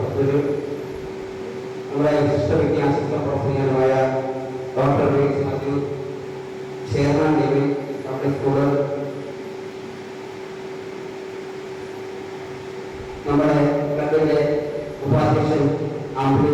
നമ്മുടെ വിശിഷ്ട വിദ്യാഭ്യാസ പ്രവർത്തകനായ ഡോക്ടർ മാത്യു, ചെയർമാൻ ദേവി പബ്ലിക് സ്കൂള്, നമ്മുടെ ക്ലബിന്റെ ഉപാധ്യക്ഷൻ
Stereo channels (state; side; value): identical; both; correlation 1.00